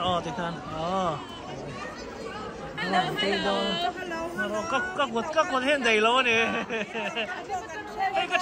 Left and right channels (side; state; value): both; identical; correlation 1.00